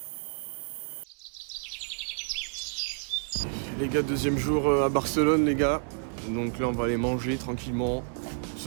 Les gars, deuxième jour à Barcelone les gars. Donc là on va aller manger tranquillement.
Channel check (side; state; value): left; silent; 58 dB below the other